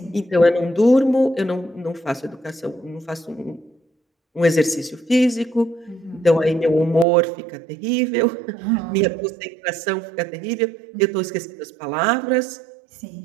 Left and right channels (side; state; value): left; drops out; at 7.1 s